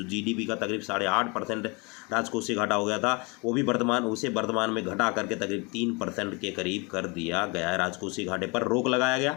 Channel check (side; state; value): right; quieter; 29.2 dB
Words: जीडीपी का तकरीब 8.5% राजकोषीय घाटा हो गया था, वो भी वर्तमान में घटा करके तकरीब 3% के करीब कर दिया गया है। राजकोषीय घाटे पर रोक लगाया गया।